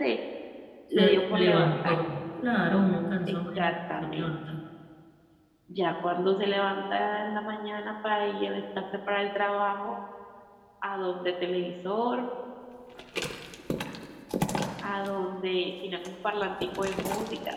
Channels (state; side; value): identical; both; correlation 1.00